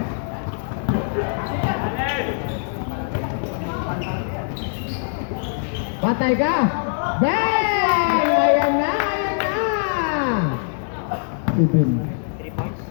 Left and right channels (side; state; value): right; silent; digital silence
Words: Patay ka! Bang! Ayan na! Ayan na! Ibin. 3 points.